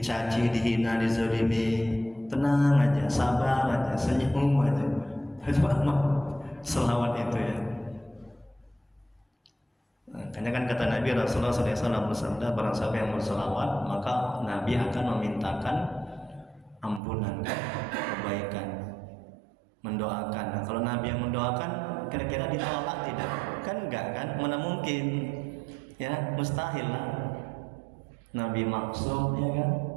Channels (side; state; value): left; drops out; at 17.0 s